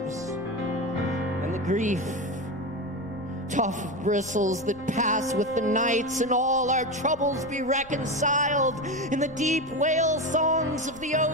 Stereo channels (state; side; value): noise; left; rumble, 21 dB below the sound